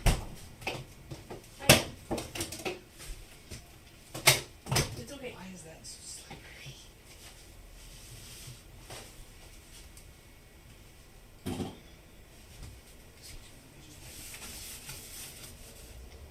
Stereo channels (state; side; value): identical; both; correlation 1.00